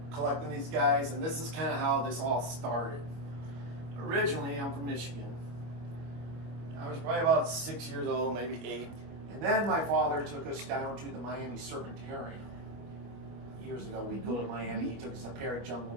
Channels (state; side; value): late; left; 25 ms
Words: collecting these guys, and this is kind of how this all started. Originally, I'm from Michigan. I was probably about 6 years old, maybe 8. And then my father took us down to the Miami Serpentarium. Years ago, we'd go to Miami. He took us to Parrot Jungle,